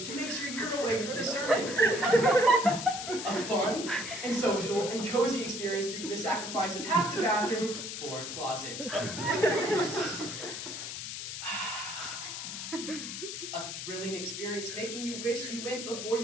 to make sure you're awake for the sermon. A fun and social and cozy experience through the sacrifice of half the bathroom for a closet. A thrilling experience making you wish you went before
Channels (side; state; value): left; noise; hiss, 6 dB below the sound